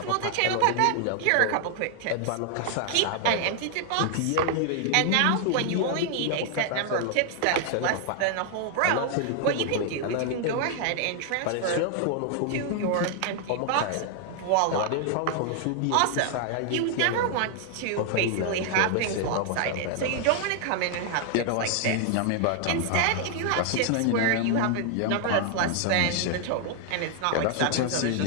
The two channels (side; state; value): both; different; correlation 0.00